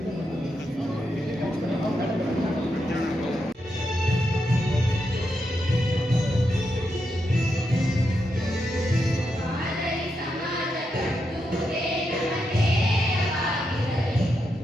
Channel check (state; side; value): normal; both; correlation 0.84